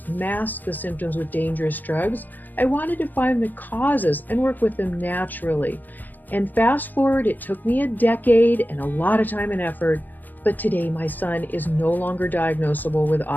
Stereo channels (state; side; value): late; right; 0.086 ms